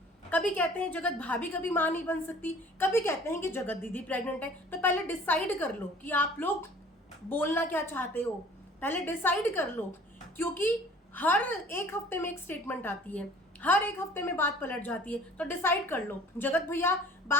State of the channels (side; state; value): both; normal; correlation 0.49